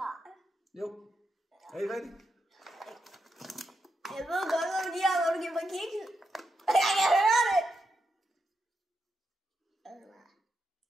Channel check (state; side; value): normal; both; correlation 0.84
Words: Jo. Er I rigtigt? Jeg ved godt, hvad de her, hvor du giver mig kiks. Jeg kan høre det.